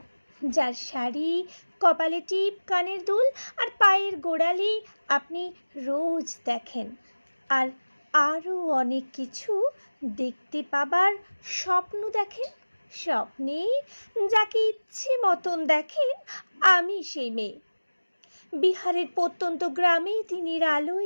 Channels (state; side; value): inverted; both; correlation -1.00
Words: যার শাড়ি, কপালে টিপ, কানের দুল আর পায়ের গোড়ালি আপনি রোজ দেখেন, আর আরও অনেক কিছু দেখতে পাবার স্বপ্ন দেখেন। স্বপ্নে যাকে ইচ্ছে মতন দেখেন, আমি সেই মেয়ে। বিহারের প্রত্যন্ত গ্রামে দিনের